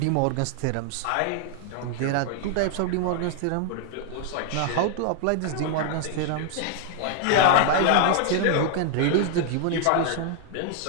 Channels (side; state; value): both; different; correlation 0.00